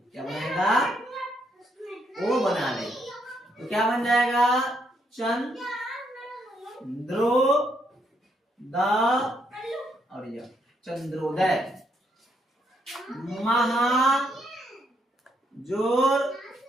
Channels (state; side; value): normal; both; correlation 0.75